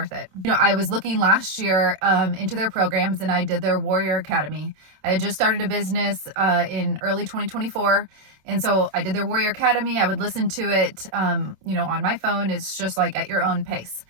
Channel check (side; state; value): left; late; 27 ms